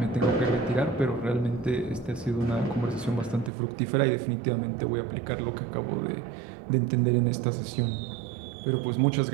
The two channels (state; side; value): drops out; left; at 3.5 s